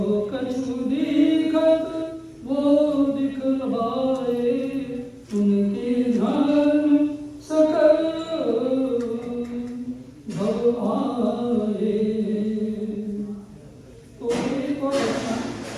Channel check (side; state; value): both; identical; correlation 1.00